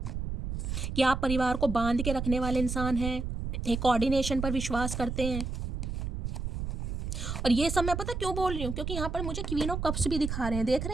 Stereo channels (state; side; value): noise; right; rumble, 4 dB below the sound